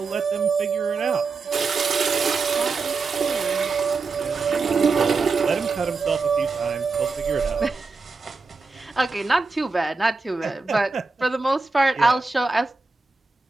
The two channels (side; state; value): left; quieter; 4.2 dB